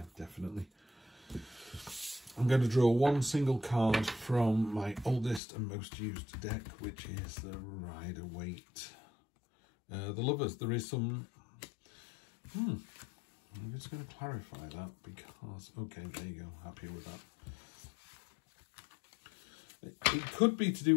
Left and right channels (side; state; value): right; drops out; at 5.4 s